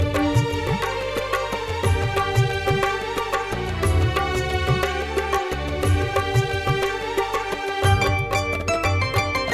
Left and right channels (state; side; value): identical; both; correlation 1.00